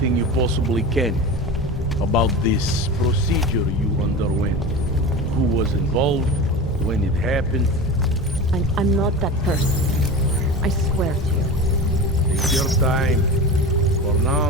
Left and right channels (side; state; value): both; normal; correlation 0.30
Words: you possibly can about this procedure you underwent. Who was involved, when it happened. I'm not that person. I swear to you. Take your time. For